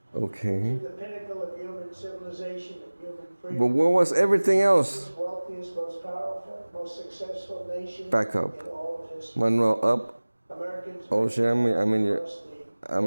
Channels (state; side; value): inverted; both; correlation -1.00